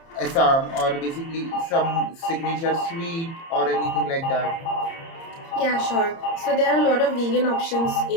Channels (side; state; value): right; late; 30 ms